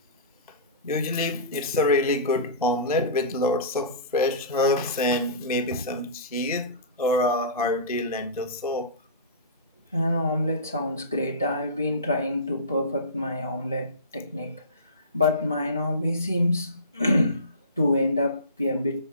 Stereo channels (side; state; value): both; inverted; correlation -0.31